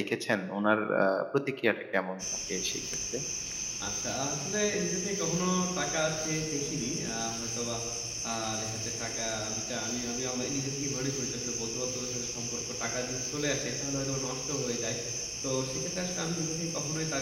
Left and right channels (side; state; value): both; identical; correlation 1.00